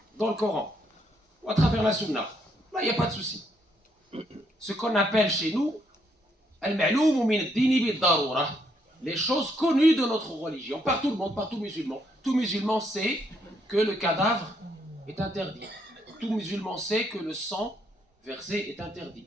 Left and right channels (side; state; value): both; normal; correlation 0.73